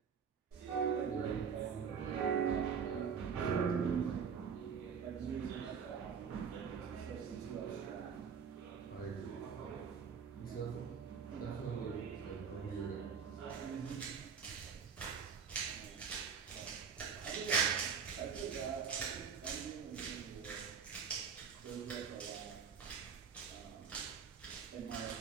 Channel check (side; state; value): left; quieter; 6.6 dB